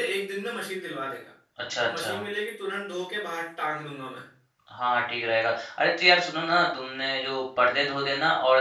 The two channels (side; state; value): both; identical; correlation 1.00